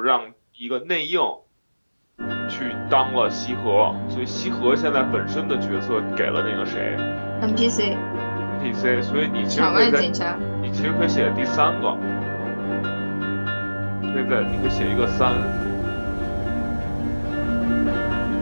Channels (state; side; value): inverted; both; correlation -1.00